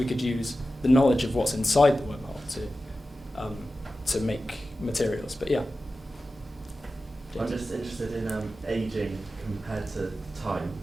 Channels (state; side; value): normal; both; correlation 0.93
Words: could use the knowledge of what's inside the wormhole to make materials. But yeah. I'm just interested in aging compared to time.